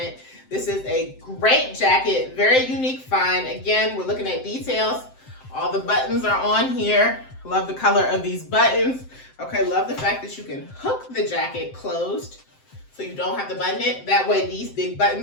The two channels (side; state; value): right; late; 7.7 ms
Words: This is a great jacket, very unique find. Again, we're looking at details. All the buttons are on here. Love the color of these buttons. Okay, love the fact that you can hook the jacket closed so you don't have to button it. That way these big